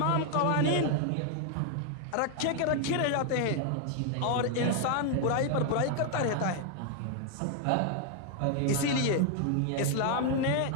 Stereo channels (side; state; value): both; different; correlation 0.00